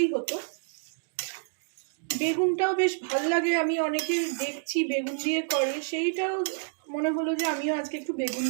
হতো। বেগুনটাও বেশ ভাল লাগে, আমি অনেকে দেখছি বেগুন দিয়ে করে, সেইটাও মনে হলো যে আমিও আজকে একটু বেগুন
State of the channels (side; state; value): left; silent; digital silence